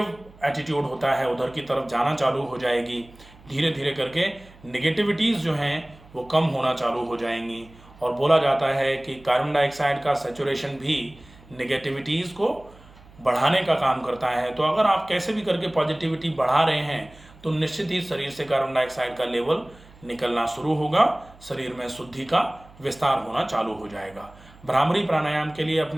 एटीट्यूड होता है उधर की तरफ जाना चालू हो जाएगी। धीरे धीरे करके नेगेटिविटीज़ जो हैं वो कम होना चालू हो जाएंगी। और बोला जाता है कि कार्बन डाइऑक्साइड का सैचुरेशन भी नेगेटिविटीज़ को बढ़ाने का काम करता है। तो अगर आप कैसे भी करके पॉजिटिविटी बढ़ा रहे हैं तो निश्चित ही शरीर से कार्बन डाइऑक्साइड का लेवल निकलना शुरू होगा, शरीर में शुद्धि का विस्तार होना चालू हो जाएगा। भ्रामरी प्राणायाम के लिए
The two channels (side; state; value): right; noise; hum, 24 dB below the sound